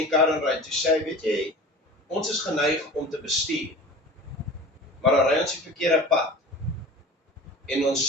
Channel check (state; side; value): normal; both; correlation 0.38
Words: die kar ry, toe sê hy, weet jy, ons is geneig om te bestuur. Maar dan ry ons die verkeerde pad. En ons